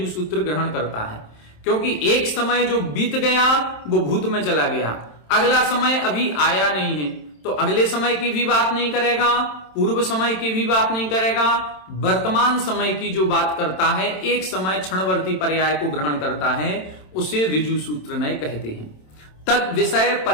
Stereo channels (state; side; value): late; right; 27 ms